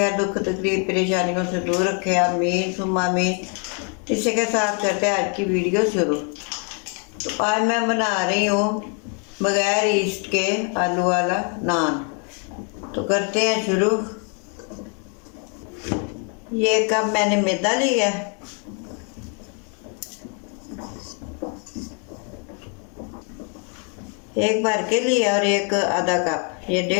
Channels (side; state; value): right; quieter; 39.2 dB